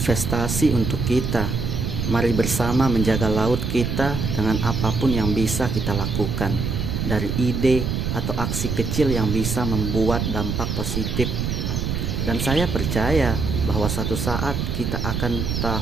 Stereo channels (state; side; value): noise; right; rumble, 1 dB below the sound